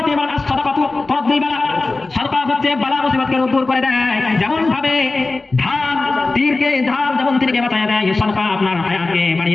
এবার সাদাকাতু তরদ্দি বালা, সাদাকা হচ্ছে বালা মুসিবতকে দূর করে দেয়। যেমন ভাবে ধান যেমন তীরকে বাঁচায় দেয়, সাদাকা আপনার হায়াতকে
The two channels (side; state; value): right; quieter; 3.5 dB